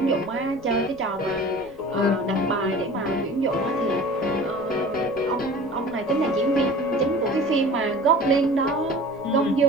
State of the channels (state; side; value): noise; right; rumble, 28 dB below the sound